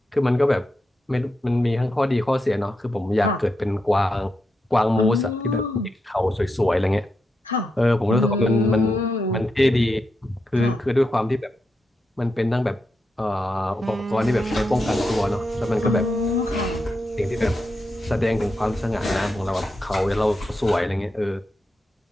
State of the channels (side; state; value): both; normal; correlation 0.86